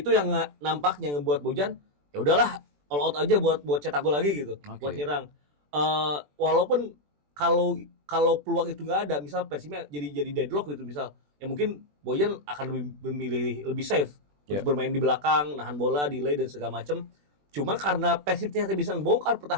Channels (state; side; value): late; left; 20 ms